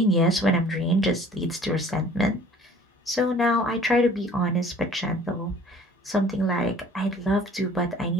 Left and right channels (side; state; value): both; normal; correlation 0.52